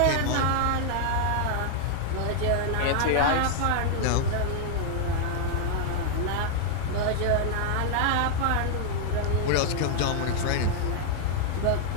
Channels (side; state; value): both; different; correlation 0.00